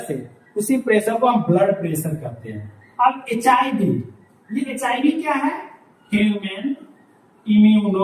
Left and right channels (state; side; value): identical; both; correlation 1.00